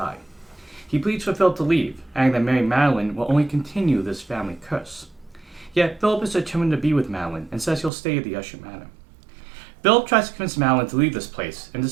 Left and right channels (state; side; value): drops out; left; at 7.9 s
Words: He pleads for Philip to leave, adding that marrying Madeline will only continue this family curse. Yet, Philip is determined to be with Madeline and says he'll stay at the Usher Manor. Philip tries to convince Madeline to leave this place, and